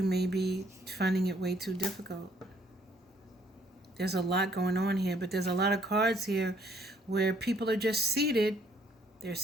may be finding it way too difficult. There's a lot going on here, but there's a lot of cards here where people are just seated. They're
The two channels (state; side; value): normal; both; correlation 0.65